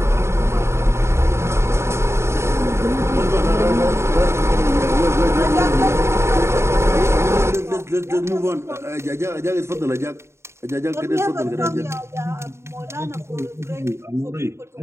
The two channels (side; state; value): left; late; 0.13 ms